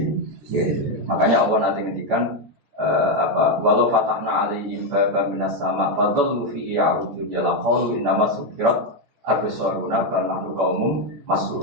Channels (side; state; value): left; late; 14 ms